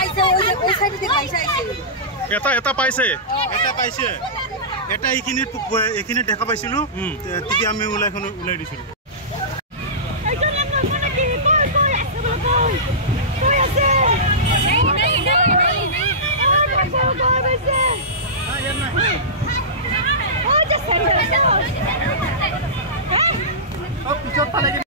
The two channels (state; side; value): normal; both; correlation -0.19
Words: এটা পাইছে এটা এইখিনিত দেখা পাইছিলো তেতিয়া আমি ওলাই দিছিলো